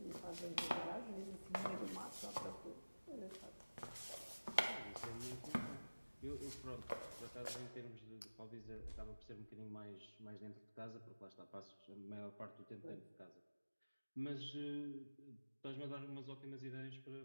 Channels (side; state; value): both; inverted; correlation -1.00